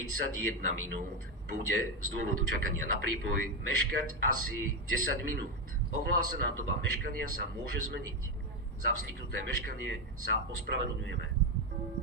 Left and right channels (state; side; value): normal; both; correlation 0.08